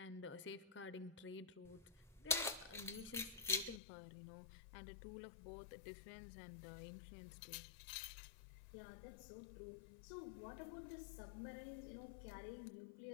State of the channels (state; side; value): drops out; right; at 3.8 s